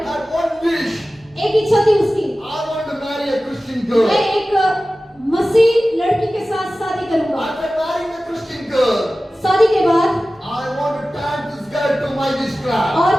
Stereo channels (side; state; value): both; normal; correlation 0.96